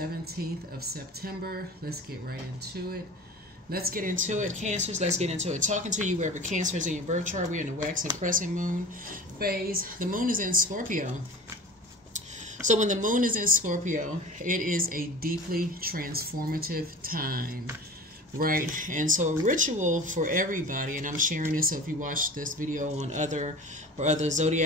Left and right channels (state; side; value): normal; both; correlation 0.37